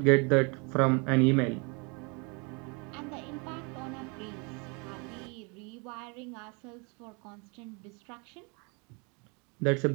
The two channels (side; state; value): left; quieter; 31.8 dB